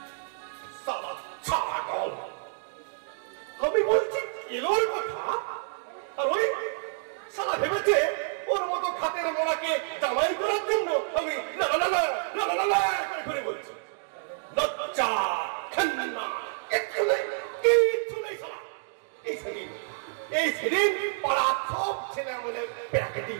ছাগল, আমি বলছি কেলোর কথা, আর ওই সালা ভেবেছে ওর মতো খাতের মোড়াকে জামাই করার জন্য আমি না না না না না না করে বলছি। লজ্জা খান্না কিচ্ছু নেই, কিচ্ছু নেই সালা। এই সেদিন পাড়া সব ছেলে আমাদের পেয়াকে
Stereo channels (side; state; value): left; silent; digital silence